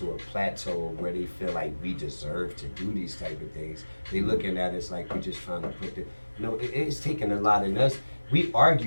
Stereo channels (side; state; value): both; inverted; correlation -1.00